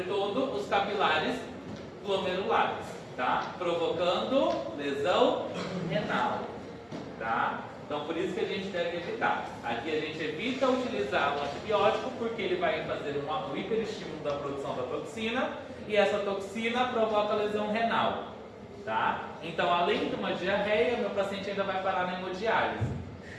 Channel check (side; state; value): both; identical; correlation 1.00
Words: os capilares glomerulares, tá? Provocando lesão renal, tá? Então, por isso que a gente deve evitar. Aqui a gente evita utilizar o antibiótico porque ele vai fazer um hiperestímulo da produção da toxina e essa toxina provoca lesão renal, tá? Então, além de uma diarreia, meu paciente ainda vai parar na hemodiálise,